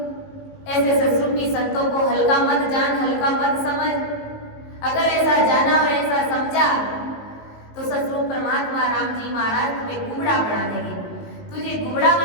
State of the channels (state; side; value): late; right; 19 ms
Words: ऐसे सत्सरूपी संतों को हल्का मत जान, हल्का मत समझ। अगर ऐसा जाना और ऐसा समझा तो सतरूप परमात्मा राम जी महाराज तुम्हें गुबड़ा बना देंगे, तुझे गुबड़ा